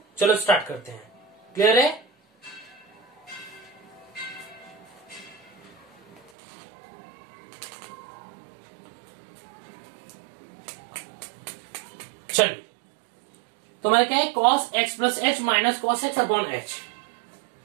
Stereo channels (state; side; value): drops out; left; at 6.3 s